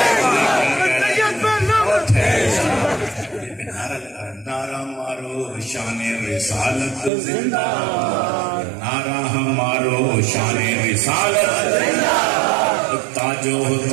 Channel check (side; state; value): left; drops out; at 7.1 s